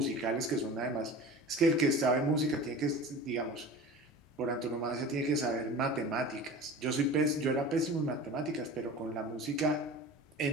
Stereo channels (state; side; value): normal; both; correlation 0.36